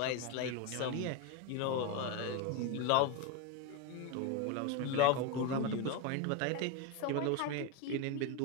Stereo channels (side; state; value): both; different; correlation 0.03